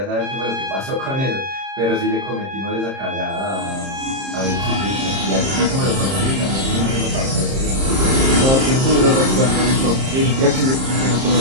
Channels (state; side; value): late; left; 30 ms